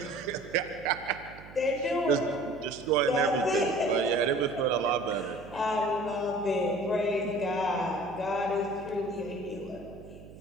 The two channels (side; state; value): right; noise; hum, 18 dB below the sound